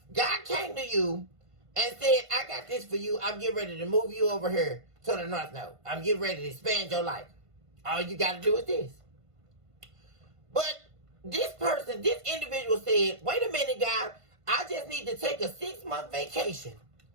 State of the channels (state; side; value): late; left; 1.5 ms